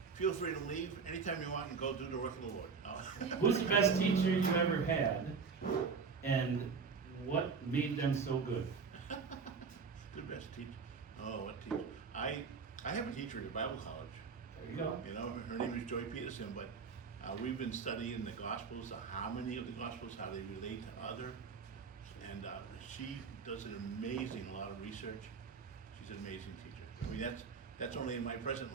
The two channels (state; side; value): quieter; left; 5.4 dB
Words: leave anytime you want and go do the work of the Lord. Who's the best teacher you've ever had, and what made them so good? Good best teacher. Oh, what teacher? I have a teacher at Bible college. There you go. You know, her name is Joy Peterson, but we've been studying the Gospels, the harmony of the Gospels, how they relate to others, and she does an amazing lot of research. She's an amazing teacher. I mean, that's only in my present